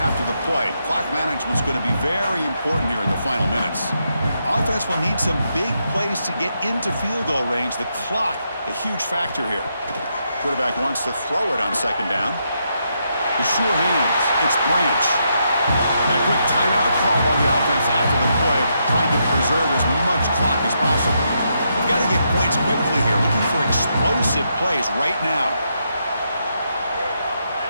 the play. Clock management is going to be very important here in the final minutes. Offense will need some big plays to get into field goal range. The clock, a huge factor here. Quarterback wants to throw it on 2nd down. The sure hands. It's Branch. And a quick timeout call by the offense after the play, trying to preserve as much clock as possible. We've got to get points quickly here, looking for explosive plays right now.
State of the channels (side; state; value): both; inverted; correlation -0.80